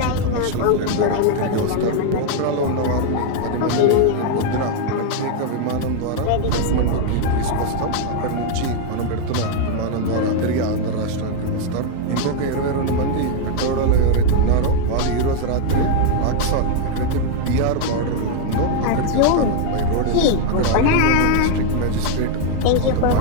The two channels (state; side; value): different; both; correlation 0.00